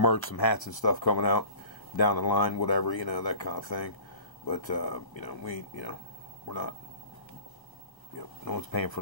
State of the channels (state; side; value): late; right; 1.0 ms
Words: some hats and stuff coming out down the line, whatever, that kind of thing. But, we're not, no one's paying for